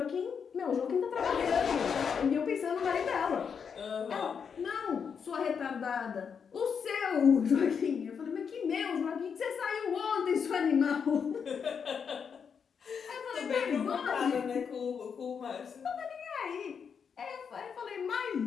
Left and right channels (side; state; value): right; quieter; 6.6 dB